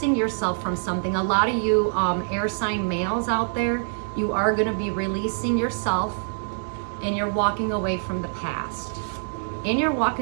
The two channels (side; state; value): left; silent; digital silence